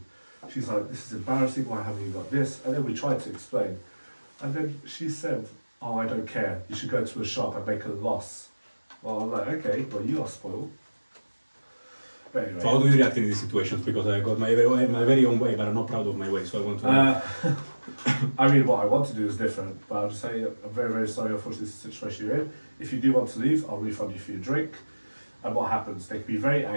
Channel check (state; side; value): inverted; both; correlation -1.00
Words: she's like, this is embarrassing. Why haven't you got this? And then we tried to explain. And then she said, oh, I don't care. You should go to a shop and make a loss. Well, I'm like, okay, well, you are spoiled. But anyway. So how do you react in these situations? Because I got my very own way, but I'm not proud of my way, so I want to. I mean, what I want to do is different, but I'll just say I'm very, very sorry, unfortunately, this is the situation you're in. If you do want to leave, I'll refund you for your drink. And what happens? They can be very